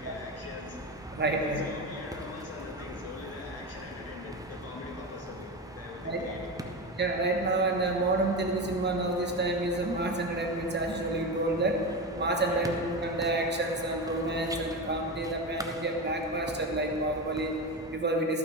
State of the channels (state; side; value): normal; both; correlation 0.21